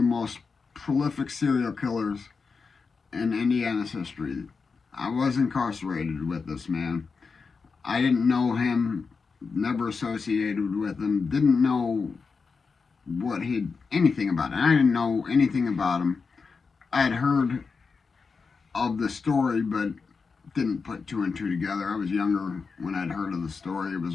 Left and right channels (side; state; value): right; quieter; 4.9 dB